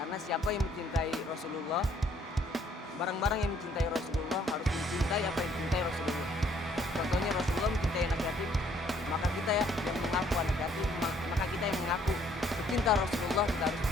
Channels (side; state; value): both; normal; correlation 0.64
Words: Karena siapa yang mencintai Rasulullah, barang-barang yang mencintai Rasulullah harus mencintai apa yang dicintai Rasulullah. Contohnya Rasulullah mencintai anak yatim, maka kita ya yang mengaku anak yatim, maka kita yang mengaku pecinta Rasulullah, kita harus